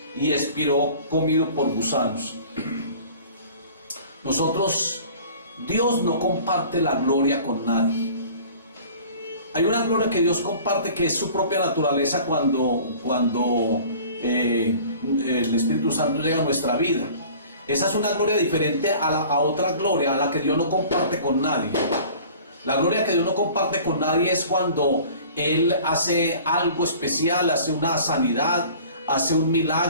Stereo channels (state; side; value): inverted; both; correlation -0.46